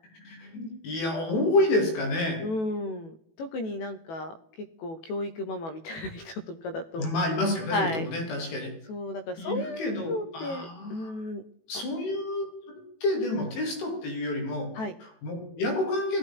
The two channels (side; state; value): right; late; 18 ms